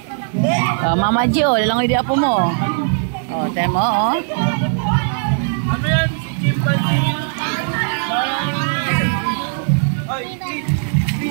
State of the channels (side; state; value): left; silent; digital silence